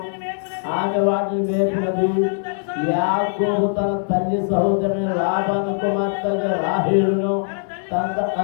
ఆమె వాటిని మేపినది. యాకోబు తన తల్లి సహోదరుని లాబాను కుమార్తెగా రాహేలును తన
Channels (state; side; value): silent; right; digital silence